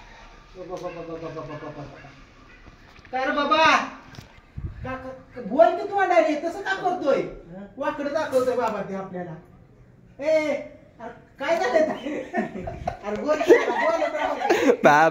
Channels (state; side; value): identical; both; correlation 1.00